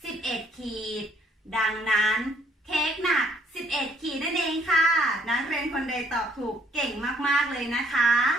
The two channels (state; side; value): normal; both; correlation 0.65